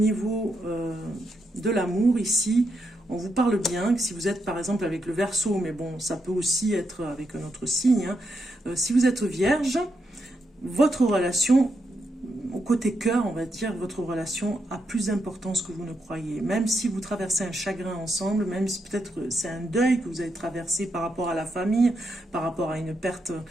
de l'amour, ici, on vous parle bien, que si vous êtes par exemple avec le Verseau, mais bon, ça peut aussi être avec un autre signe, hein. Si vous êtes Vierge, votre relation, au côté cœur, on va dire, votre relation a plus d'importance que vous ne croyez. Même si vous traversez un chagrin ensemble, même si peut-être c'est un deuil que vous avez traversé par rapport à la famille, par rapport à une perte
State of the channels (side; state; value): both; normal; correlation 0.82